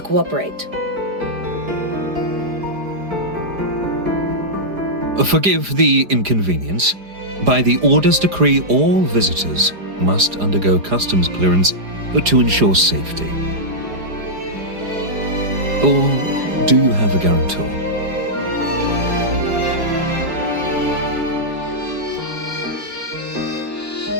cooperate. Forgive the inconvenience. By the Order's decree, all visitors must undergo customs clearance to ensure safety. Or do you have a guarantor?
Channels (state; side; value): late; left; 4.9 ms